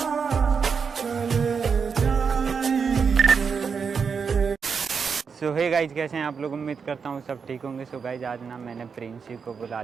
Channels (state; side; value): quieter; left; 5.9 dB